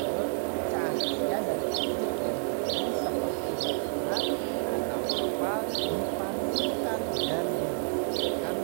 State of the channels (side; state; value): left; silent; digital silence